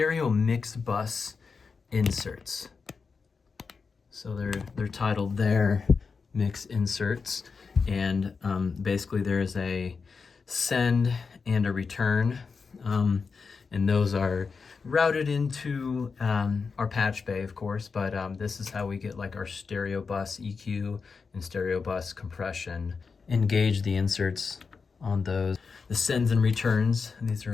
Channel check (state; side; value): quieter; right; 5.0 dB